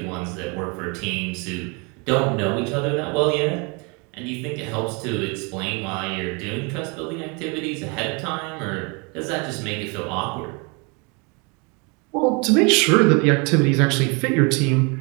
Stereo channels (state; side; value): quieter; left; 31.5 dB